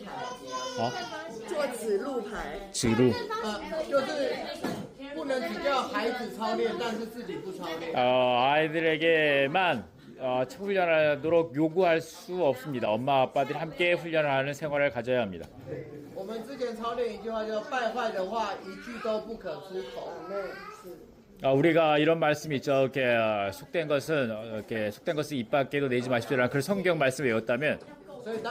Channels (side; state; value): both; identical; correlation 1.00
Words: 牌，做指路牌。 지루. 就是不能只叫孩子操练，但是自己不操练。 아이들에게만 훈련하도록 요구할 수 없습니다. 엄마 아빠들이 함께 훈련을 하는 생활을 가져야 합니다. 我们之前操练一句话叫“败坏的话一句都不可出口”。 우리가 이런 말씀이 있죠. 이렇게 속된 것은 입 밖에도 내지 마십시오라는 그런 성경 말씀을 외웠다면 所以